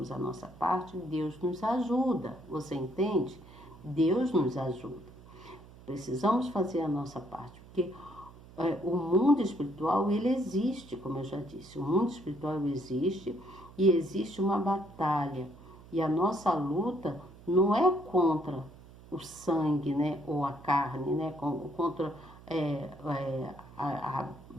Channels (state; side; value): noise; right; hum, 20 dB below the sound